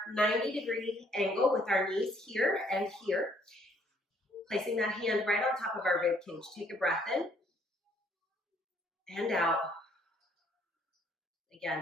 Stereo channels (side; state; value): both; normal; correlation 0.65